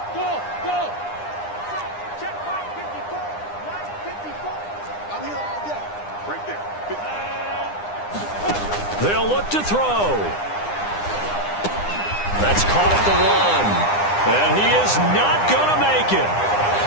They'll look to throw. That's caught at the 1. And he is not going to make it.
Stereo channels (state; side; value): late; right; 9.8 ms